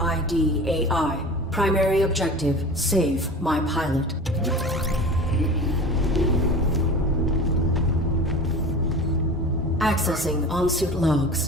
AI. Primary objective, save my pilot. Accessing on-suit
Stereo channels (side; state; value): both; normal; correlation 0.35